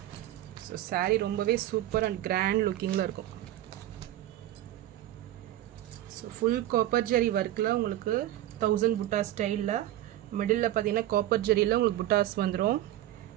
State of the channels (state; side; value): quieter; left; 13.7 dB